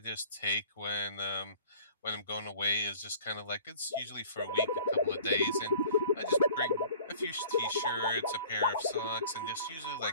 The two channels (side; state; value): both; inverted; correlation -0.50